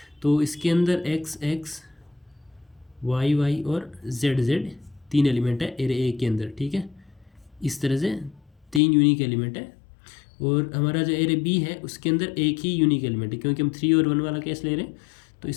तो इसके अंदर एक्स एक्स वाई वाई और जेड जेड तीन एलिमेंट है एरे ए के अंदर। ठीक है, इस तरह से तीन यूनिक एलिमेंट है, और हमारा जो एरे बी है उसके अंदर एक ही यूनिक एलिमेंट है क्योंकि हम 3 और 1 वाला केस ले रहे हैं। तो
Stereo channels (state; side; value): drops out; right; at 8.8 s